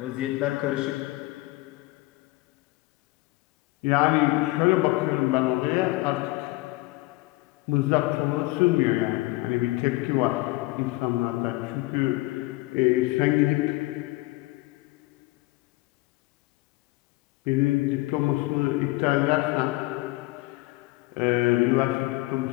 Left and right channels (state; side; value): quieter; right; 20.9 dB